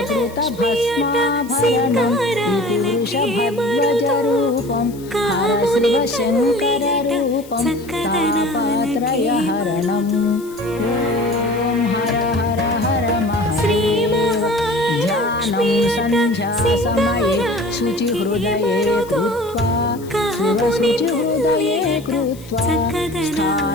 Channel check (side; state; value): left; noise; hiss, 22 dB below the sound